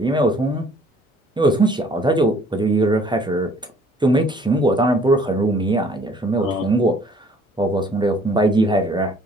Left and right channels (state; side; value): normal; both; correlation 0.58